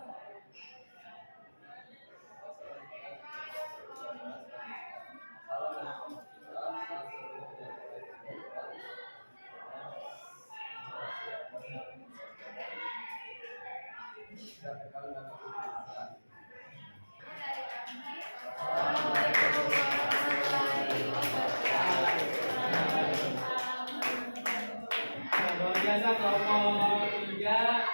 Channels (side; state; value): both; inverted; correlation -1.00